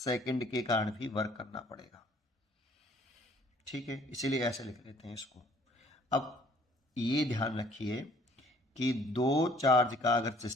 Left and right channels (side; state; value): both; normal; correlation 0.58